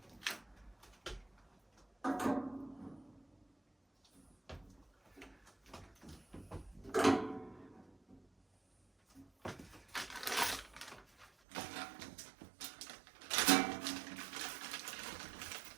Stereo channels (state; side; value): drops out; left; at 11.2 s